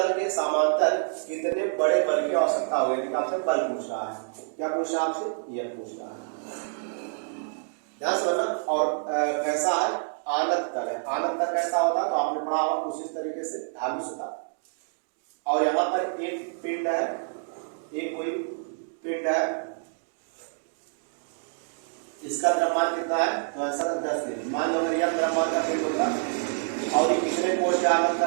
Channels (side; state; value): left; silent; digital silence